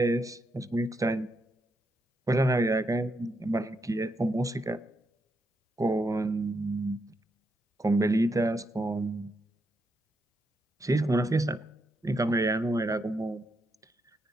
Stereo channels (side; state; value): both; normal; correlation 0.80